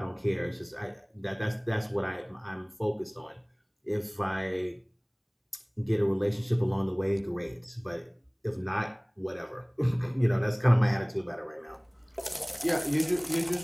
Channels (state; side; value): identical; both; correlation 1.00